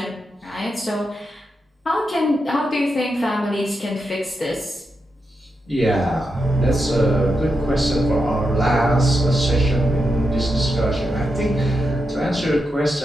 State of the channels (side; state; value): both; normal; correlation 0.86